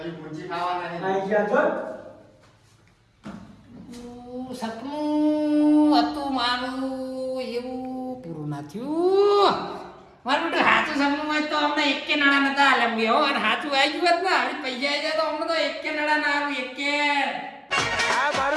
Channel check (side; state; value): both; identical; correlation 1.00